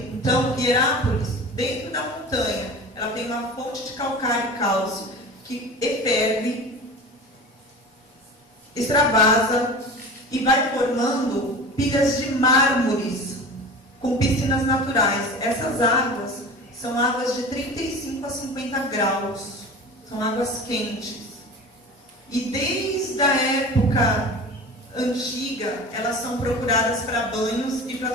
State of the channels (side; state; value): both; normal; correlation 0.35